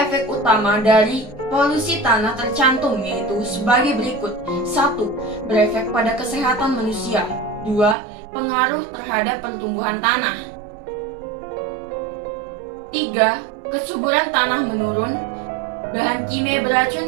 efek utama dari polusi tanah tercantum, yaitu sebagai berikut. 1. Berefek pada kesehatan manusia. 2. Pengaruh terhadap pertumbuhan tanah. 3. Kesuburan tanah menurun. Bahan kimia beracun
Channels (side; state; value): left; drops out; at 8.0 s